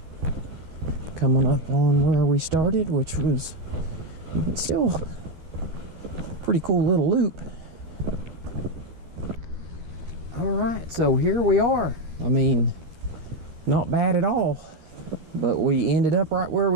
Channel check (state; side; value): late; left; 13 ms